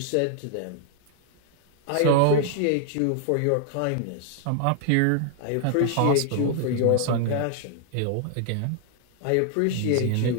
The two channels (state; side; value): different; both; correlation 0.00